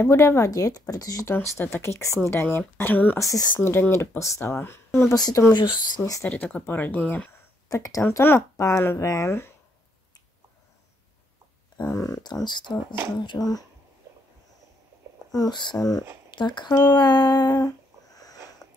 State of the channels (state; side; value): normal; both; correlation 0.73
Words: vadit, protože tohle to je taky k snídani. A dám asi snídaně do postele. Nebo si to můžu sníst tady takhle po rodině. Tak dám to na pánve. Tohle to zavřu. Musím takhle.